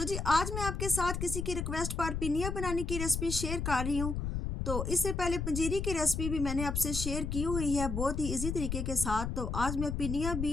जी आज मैं आपके साथ किसी की रिक्वेस्ट पर पिनिया बनाने की रेसिपी शेयर कर रही हूँ। तो इससे पहले पंजीरी की रेसिपी भी मैंने आपसे शेयर की हुई है बहुत ही इजी तरीके के साथ। तो आज मैं पिनिया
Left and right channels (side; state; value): left; noise; rumble, 3 dB below the sound